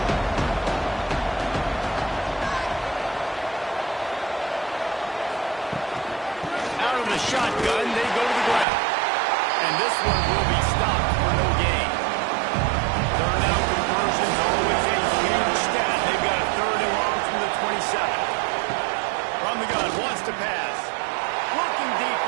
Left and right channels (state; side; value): drops out; left; at 8.7 s